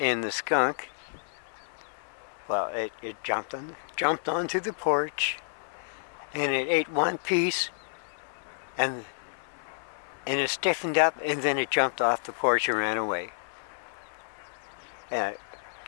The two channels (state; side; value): silent; right; 58 dB below the other